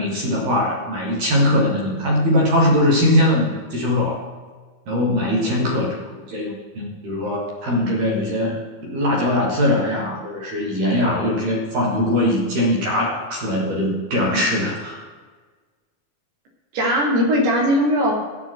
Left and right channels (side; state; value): left; late; 14 ms